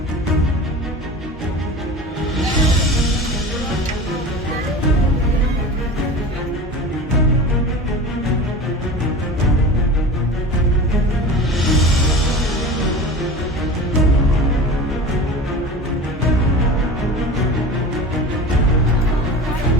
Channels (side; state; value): both; normal; correlation 0.33